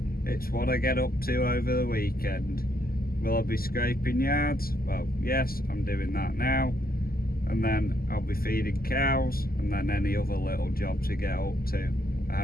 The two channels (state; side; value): late; right; 0.43 ms